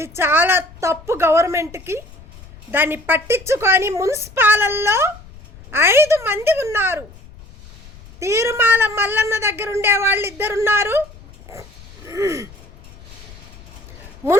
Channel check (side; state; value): left; noise; rumble, 20 dB below the sound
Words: చాలా తప్పు. గవర్నమెంట్కి దాన్ని పట్టించుకొని మున్సిపాలల్లో 5 మంది ఉన్నారు. తీరుమాల మల్లన్న దగ్గర ఉండే వాళ్ళు 2 ఉన్నారు,